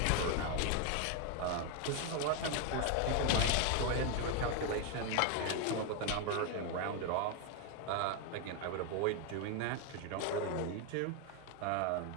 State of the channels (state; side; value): different; both; correlation 0.01